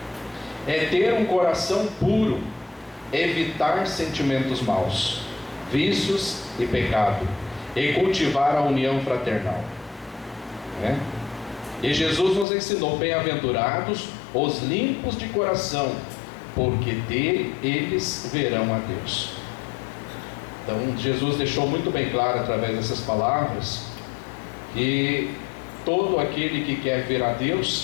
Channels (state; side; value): drops out; right; at 12.5 s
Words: É ter um coração puro, evitar sentimentos maus, vícios e pecado, e cultivar a união fraternal. E Jesus nos ensinou: bem-aventurados os limpos de coração, porque eles verão a Deus. Então Jesus deixou muito bem claro através dessas palavras que todo aquele que quer ver a